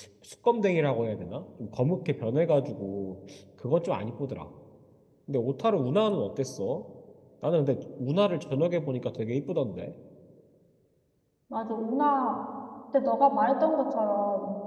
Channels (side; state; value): both; identical; correlation 1.00